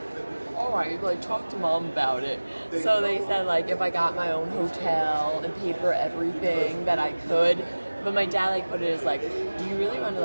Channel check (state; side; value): inverted; both; correlation -1.00